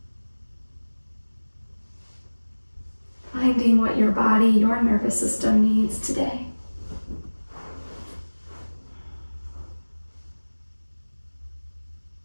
asking what your body, your nervous system needs today.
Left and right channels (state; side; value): inverted; both; correlation -1.00